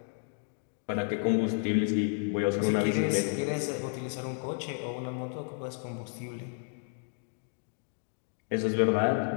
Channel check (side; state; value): right; silent; 57 dB below the other